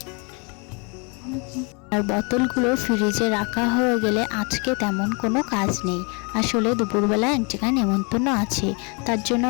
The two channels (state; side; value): quieter; right; 32.8 dB